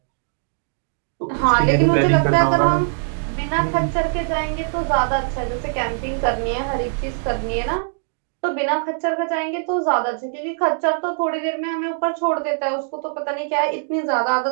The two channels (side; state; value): left; silent; digital silence